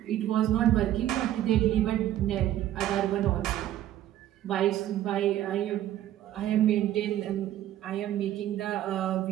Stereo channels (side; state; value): left; quieter; 12.7 dB